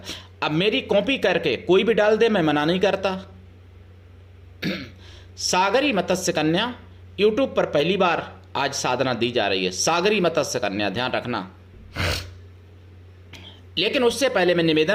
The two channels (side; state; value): both; identical; correlation 1.00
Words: अब मेरी कॉपी करके कोई भी डाल दे, मैं मना नहीं करता। सागरी मत्स्य कन्या यूट्यूब पर पहली बार आज साधना दी जा रही है, सागरी मत्स्य कन्या, ध्यान रखना। लेकिन उससे पहले मैं